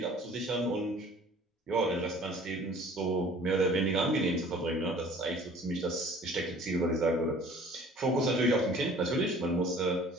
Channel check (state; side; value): normal; both; correlation 0.50